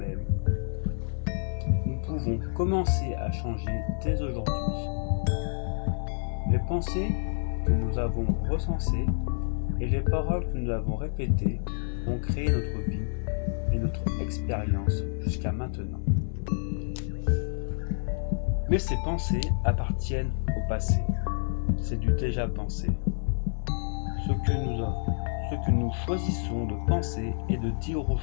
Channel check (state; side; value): silent; right; digital silence